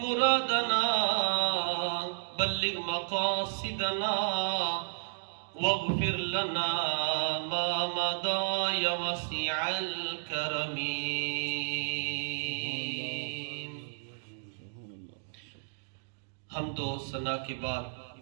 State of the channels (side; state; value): left; silent; digital silence